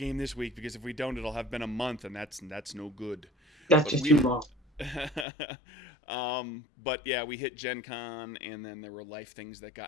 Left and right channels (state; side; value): drops out; right; at 5.2 s